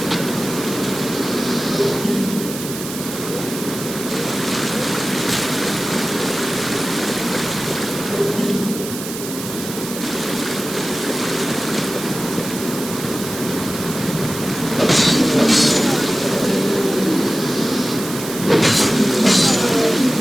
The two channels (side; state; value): right; noise; hiss, 9 dB below the sound